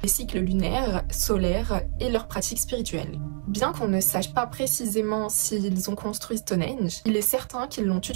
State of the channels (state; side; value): silent; left; 61 dB below the other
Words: les cycles lunaires, solaires et leurs pratiques spirituelles. Bien qu'on ne sache pas précisément s'ils ont construit Stonehenge, il est certain qu'ils l'ont